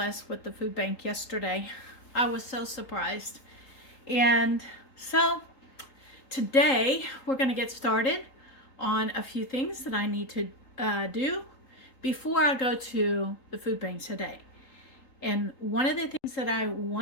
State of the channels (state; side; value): late; right; 3.8 ms